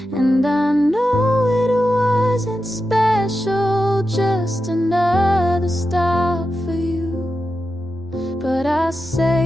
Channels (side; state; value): both; normal; correlation 0.90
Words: And I know it wasn't special, just another stop for you. But I